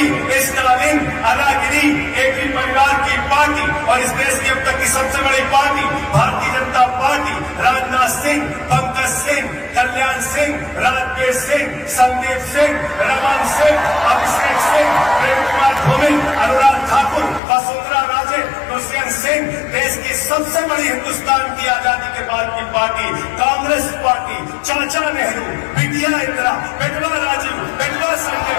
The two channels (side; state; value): right; drops out; at 17.4 s